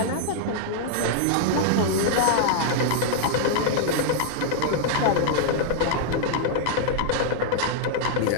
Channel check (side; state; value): both; different; correlation -0.01